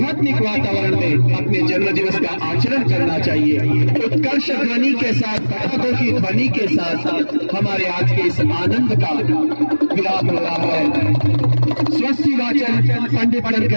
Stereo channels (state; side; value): inverted; both; correlation -1.00